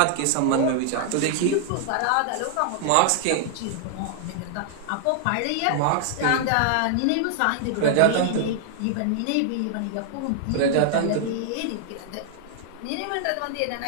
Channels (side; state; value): both; different; correlation 0.00